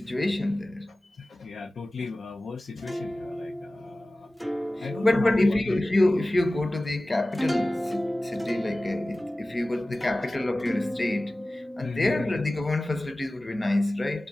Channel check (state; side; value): normal; both; correlation 0.97